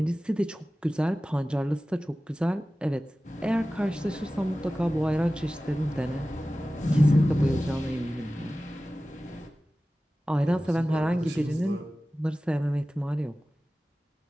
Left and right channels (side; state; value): both; normal; correlation 0.96